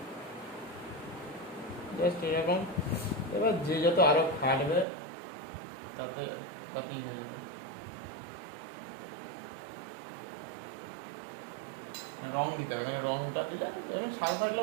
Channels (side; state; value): left; drops out; at 4.9 s